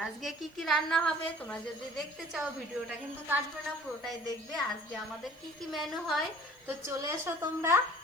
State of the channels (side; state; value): right; noise; hiss, 29 dB below the sound